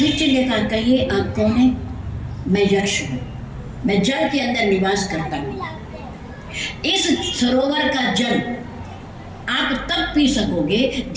ने कहा, कहिए आप कौन है। मैं यक्ष हूं, मैं जल के अंदर निवास करता हूं। इस सरोवर का जल आप तब पी सकोगे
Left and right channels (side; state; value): both; identical; correlation 1.00